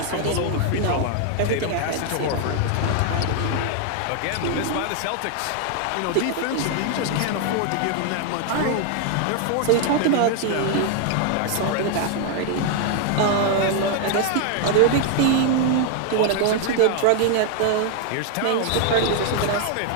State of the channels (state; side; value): different; both; correlation 0.00